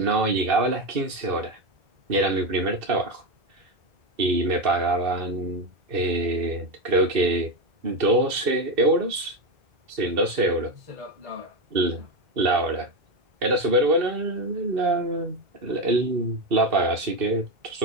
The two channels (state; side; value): late; left; 2.6 ms